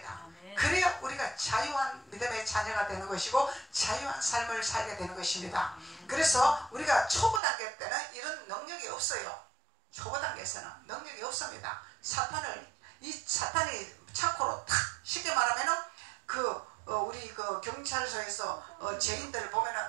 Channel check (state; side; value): drops out; left; at 7.4 s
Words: 그래야 우리가 자유한 믿음의 자녀가 되는 것이고 자유한 삶을 살게 되는 것입니다. 그래서 우리가 초보 단계 때는 이런 능력이 없어요. 초보 단계에서는 능력이 없습니다. 사탄이 착고로 탁, 쉽게 말하면은 우리 경찰서에서 죄인들을 보면은